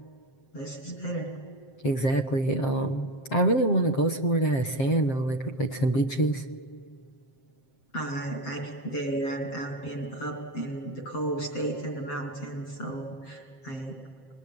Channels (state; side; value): late; right; 7.6 ms